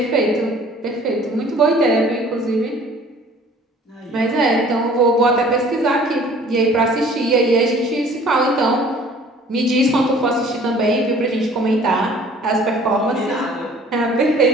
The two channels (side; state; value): both; normal; correlation 0.52